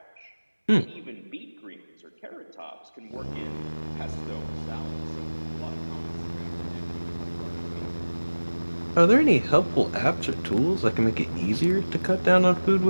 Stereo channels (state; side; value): inverted; both; correlation -1.00